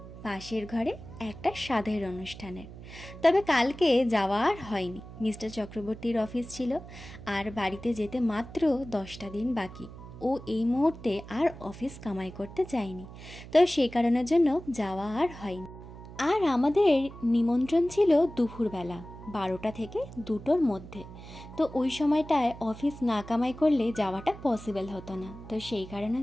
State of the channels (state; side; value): noise; right; hum, 15 dB below the sound